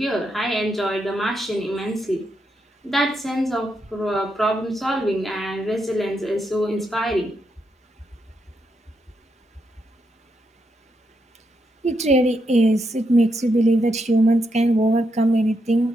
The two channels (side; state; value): both; normal; correlation 0.81